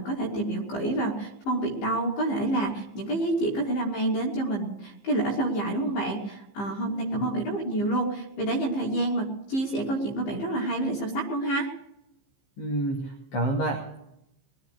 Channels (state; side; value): late; right; 15 ms